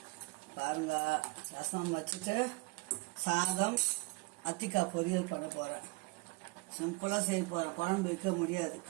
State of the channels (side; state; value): left; quieter; 25.8 dB